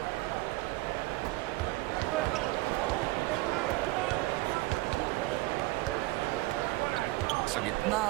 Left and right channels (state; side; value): quieter; left; 20.5 dB